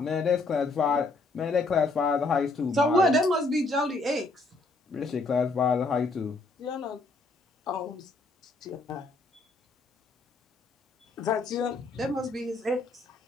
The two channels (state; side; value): quieter; right; 3.2 dB